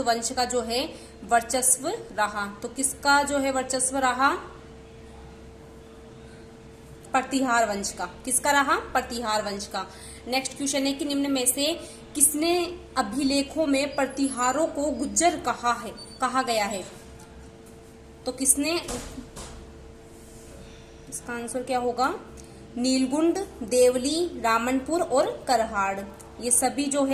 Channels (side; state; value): both; identical; correlation 1.00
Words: वंश का जो है वर्चस्व रहा? तो किसका जो है वर्चस्व रहा? प्रतिहार वंश का। किसका रहा? प्रतिहार वंश का। नेक्स्ट क्वेश्चन है कि निम्न में से किसने अभिलेखों में प्रतिहारों को गुज्जर कहा गया है? तो किसने? इसका आंसर क्या होगा? नीलगुंड, देवली, रामनपुर और करहाड़, ये सभी जो